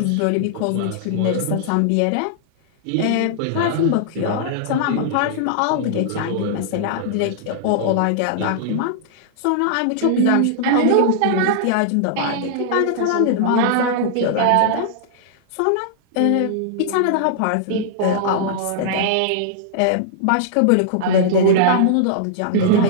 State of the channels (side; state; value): both; different; correlation -0.01